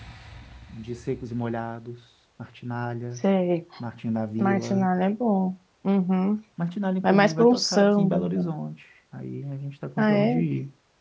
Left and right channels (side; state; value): both; identical; correlation 1.00